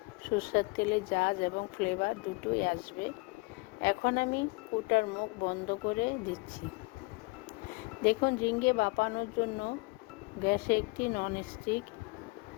সরষের তেলের ঝাঁজ এবং ফ্লেভার দুটোই আসবে। এখন আমি কৌটার মুখ বন্ধ করে দিচ্ছি। দেখুন, ঝিঙে ভাপানোর জন্য গ্যাসে একটি ননস্টিক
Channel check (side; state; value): right; quieter; 26.9 dB